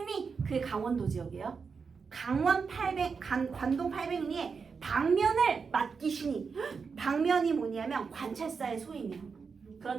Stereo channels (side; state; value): left; quieter; 5.4 dB